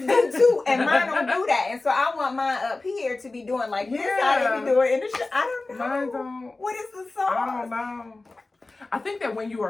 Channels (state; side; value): quieter; right; 3.3 dB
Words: do too. And mine don't do that. And so I want mine up here to be doing like this. I be doing in the shit. I don't know. Mine don't. What is the sauce? I don't know. I think that when you